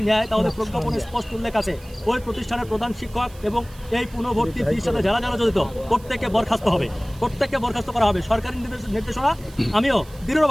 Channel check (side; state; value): right; noise; hiss, 23 dB below the sound